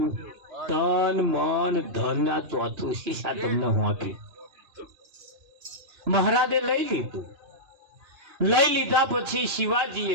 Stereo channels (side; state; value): left; late; 2.9 ms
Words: તન મન ધન આ ચોથું શીશા તમને હોંપ્યું. મહારાજે લઈ લીધું. લઈ લીધા પછી